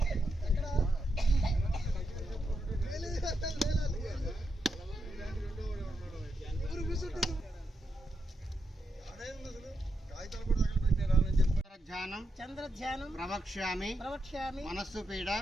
చంద్రధ్యానం ప్రవక్ష్యామి మనస్సు పీడ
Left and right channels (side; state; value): both; normal; correlation 0.84